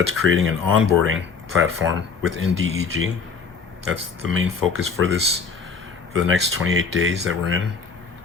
creating an onboarding platform within DEG. That's the main focus for the next 28 days that we're in.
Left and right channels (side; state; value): right; quieter; 5.3 dB